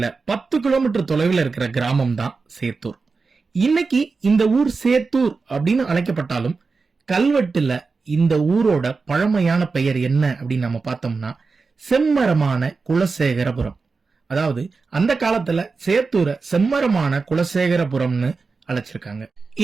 10 கிலோமீட்டர் தொலைவில் இருக்கிற கிராமம் தான் சேத்தூர். இன்னைக்கு இந்த ஊர் சேத்தூர் அப்படின்னு அழைக்கப்பட்டாலும் கல்வெட்டுல இந்த ஊரோட பழமையான பெயர் என்ன அப்படின்னு நம்ம பார்த்தோம்னா செம்மரமான குலசேகரபுரம். அதாவது அந்த காலத்துல சேத்தூரை செம்மரமான குலசேகரபுரம்னு அழைச்சிருக்காங்க.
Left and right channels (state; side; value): quieter; left; 4.4 dB